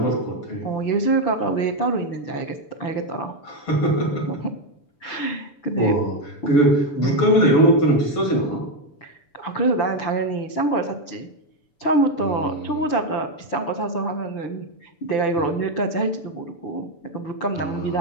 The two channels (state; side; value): late; right; 6.9 ms